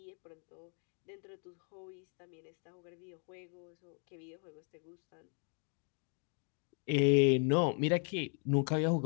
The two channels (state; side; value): quieter; right; 39.4 dB